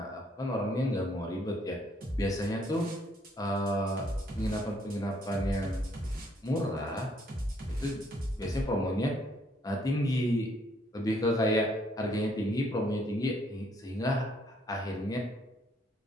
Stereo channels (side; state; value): both; normal; correlation 0.68